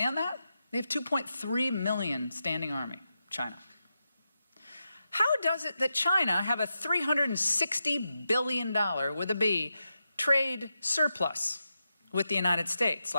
that? They have 2.3 million standing army, China. How does it that China have a $360 billion, with a B, trade surplus with the United States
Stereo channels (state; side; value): inverted; both; correlation -0.88